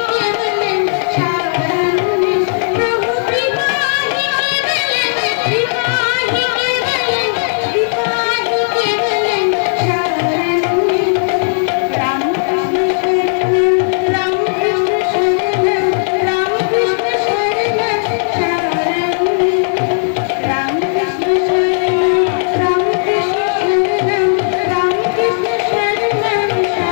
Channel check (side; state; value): right; silent; digital silence